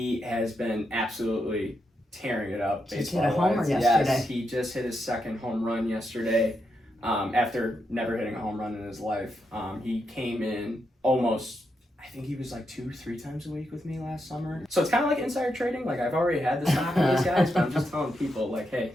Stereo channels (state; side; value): normal; both; correlation 0.83